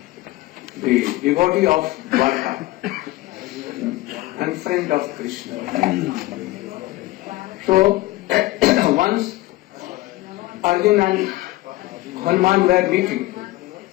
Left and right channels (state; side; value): quieter; right; 18.4 dB